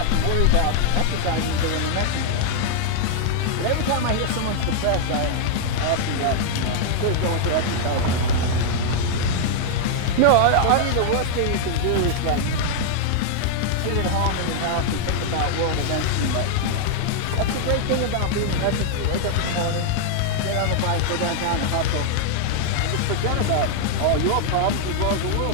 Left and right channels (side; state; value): both; different; correlation -0.01